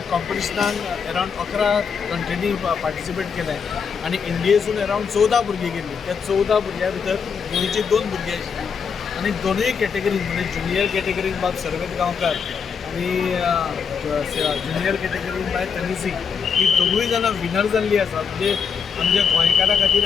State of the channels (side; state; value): right; quieter; 6.4 dB